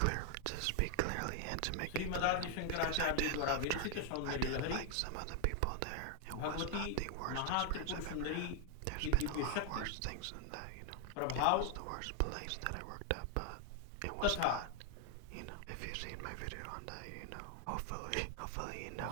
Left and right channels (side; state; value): both; different; correlation 0.00